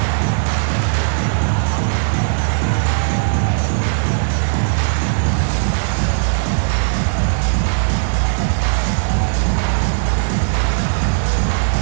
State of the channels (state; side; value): silent; left; digital silence